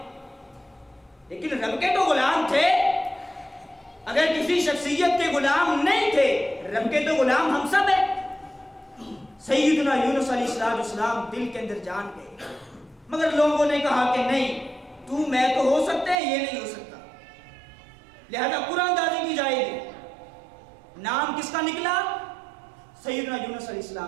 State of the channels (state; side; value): drops out; left; at 16.2 s